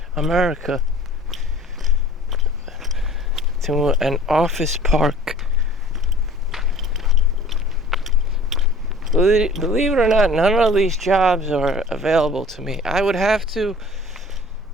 America, to an office park. Believe it or not, none of these jobs are available to me. I would have to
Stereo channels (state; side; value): normal; both; correlation 0.48